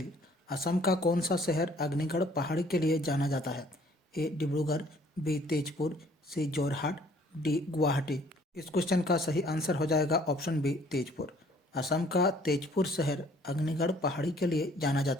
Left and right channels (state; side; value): normal; both; correlation 0.59